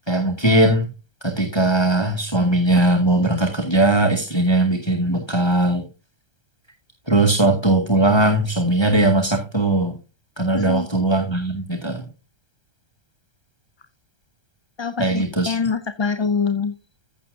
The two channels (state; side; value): late; right; 1.3 ms